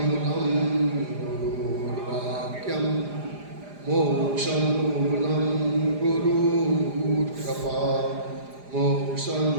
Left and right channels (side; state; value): left; late; 4.9 ms